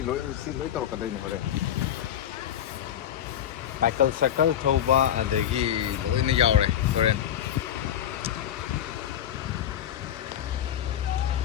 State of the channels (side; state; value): right; quieter; 10.6 dB